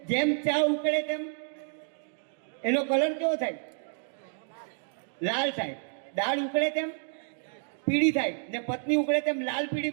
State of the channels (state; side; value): silent; left; 58 dB below the other